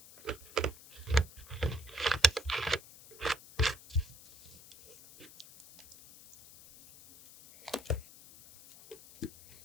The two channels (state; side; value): noise; left; hiss, 19 dB below the sound